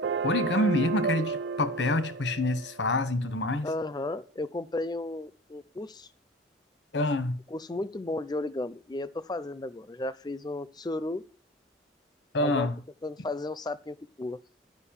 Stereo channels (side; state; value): both; normal; correlation 0.39